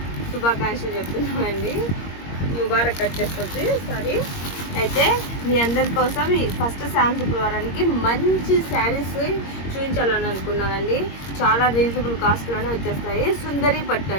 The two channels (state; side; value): late; right; 21 ms